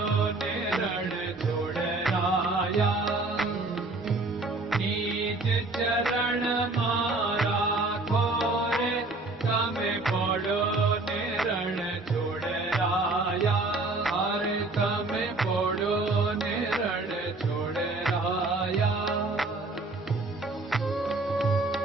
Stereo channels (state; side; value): quieter; left; 3.2 dB